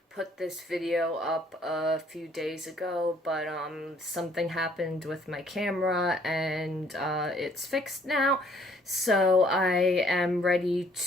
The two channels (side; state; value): both; normal; correlation 0.61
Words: put this video up a few days ago, but something happened with my camera and it's fixed now. So I am ready